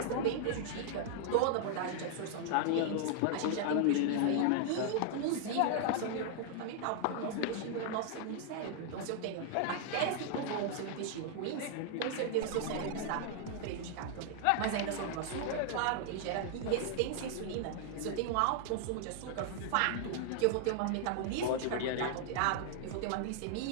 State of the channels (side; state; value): both; different; correlation 0.00